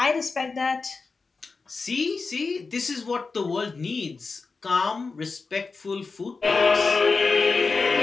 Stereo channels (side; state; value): right; quieter; 4.4 dB